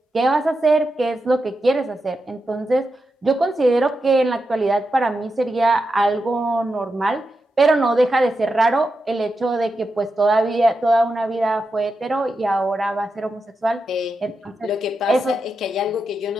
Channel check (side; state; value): both; normal; correlation 0.88